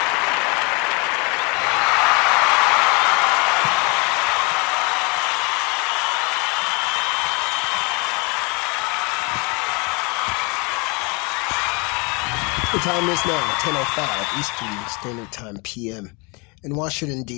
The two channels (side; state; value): right; quieter; 30.0 dB